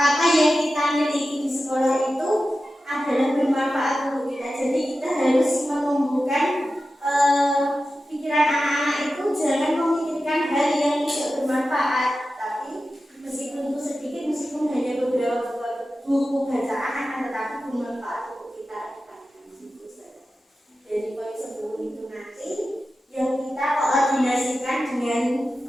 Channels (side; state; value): both; normal; correlation 0.93